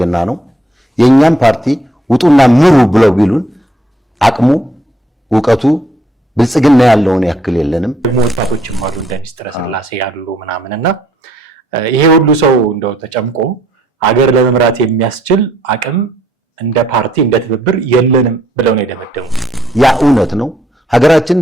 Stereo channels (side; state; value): both; normal; correlation 0.68